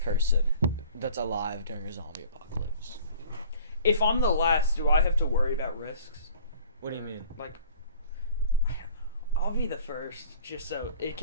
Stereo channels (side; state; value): both; inverted; correlation -0.49